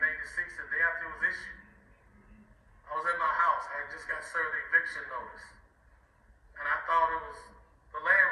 1996, the day after it was issued. I was at my house. I had just got served an eviction notice. And I thought it was the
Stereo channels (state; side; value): identical; both; correlation 1.00